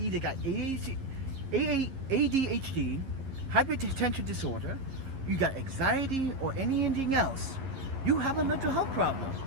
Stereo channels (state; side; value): late; left; 11 ms